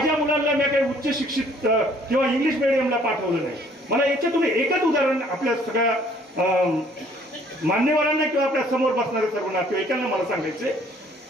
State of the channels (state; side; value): normal; both; correlation 0.60